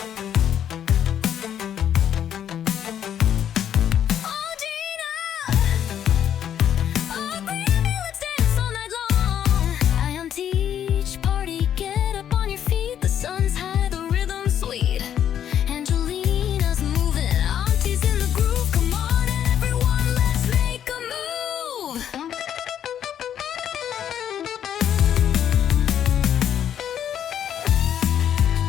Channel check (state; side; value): quieter; right; 9.8 dB